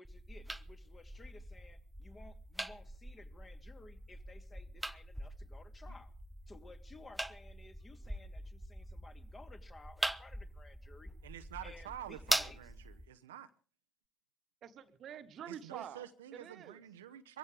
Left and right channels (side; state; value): both; normal; correlation 0.88